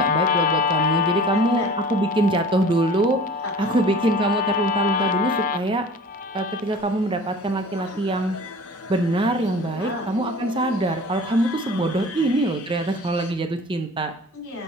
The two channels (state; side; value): normal; both; correlation 0.43